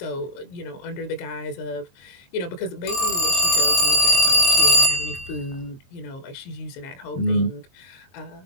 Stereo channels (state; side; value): late; right; 22 ms